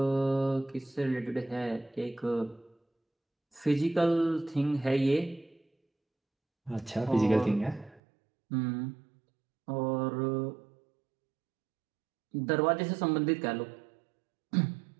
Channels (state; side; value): drops out; left; at 8.0 s